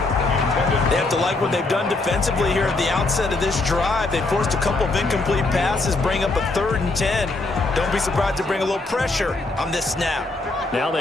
They have to like what they've done defensively here at the outset of this drive. They forced a couple of incomplete passes, bring up a 3rd and 10. Don't be surprised to bring a little pressure on this snap. Now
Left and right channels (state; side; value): quieter; right; 3.2 dB